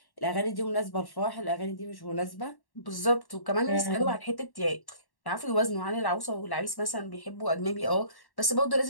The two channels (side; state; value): right; late; 1.1 ms